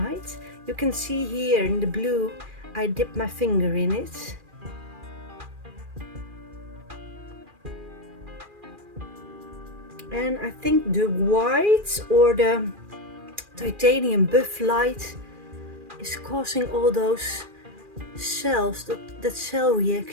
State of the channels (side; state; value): left; late; 2.4 ms